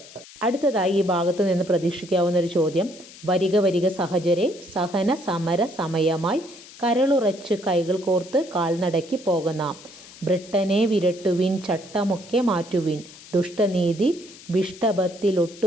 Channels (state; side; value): noise; left; hiss, 19 dB below the sound